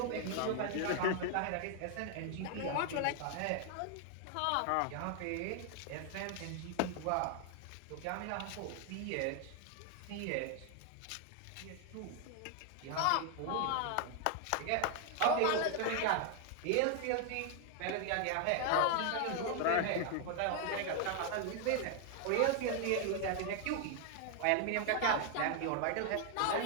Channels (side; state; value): both; different; correlation 0.00